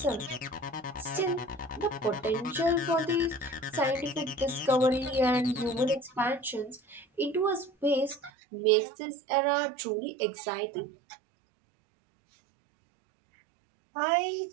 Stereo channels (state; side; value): drops out; left; at 8.3 s